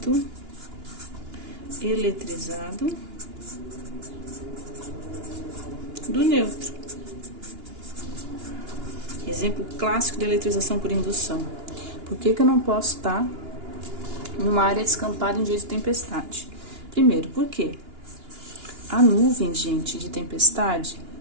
eletrizado do neutro. Exemplo clássico de eletrização por indução. Por que eu não posso estar numa área descampada em dia de tempestade? Primeiro, por quê? A nuvem, gente, de tempestade,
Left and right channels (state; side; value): late; left; 2.9 ms